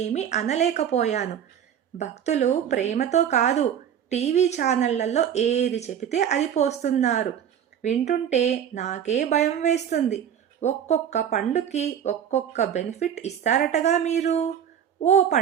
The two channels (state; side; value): quieter; left; 9.1 dB